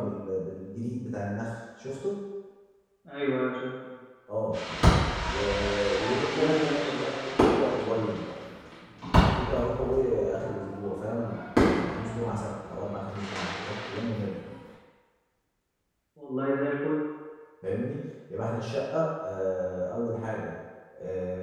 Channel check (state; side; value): identical; both; correlation 1.00